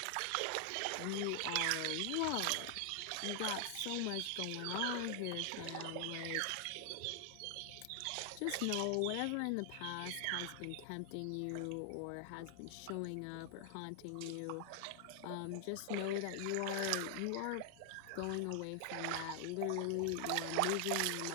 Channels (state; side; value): different; both; correlation 0.00